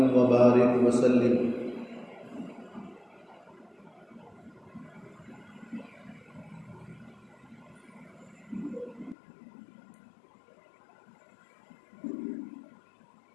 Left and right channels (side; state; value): right; drops out; at 9.2 s